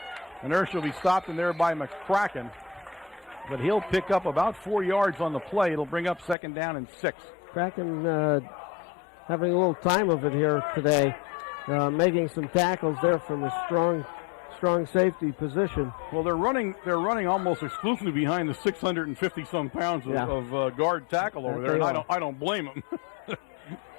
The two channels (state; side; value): drops out; right; at 6.4 s